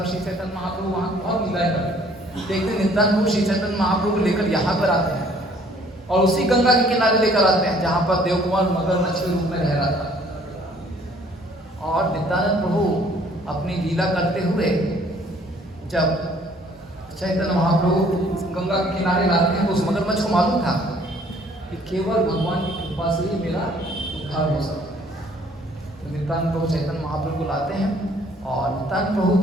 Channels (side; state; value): both; normal; correlation 0.59